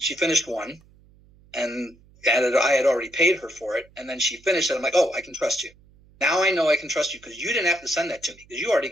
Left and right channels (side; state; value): right; noise; hum, 28 dB below the sound